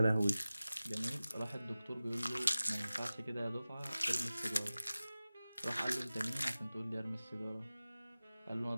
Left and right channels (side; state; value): both; inverted; correlation -0.97